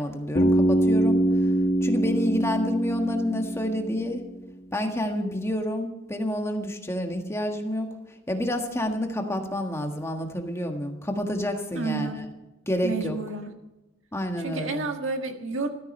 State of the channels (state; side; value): normal; both; correlation 0.74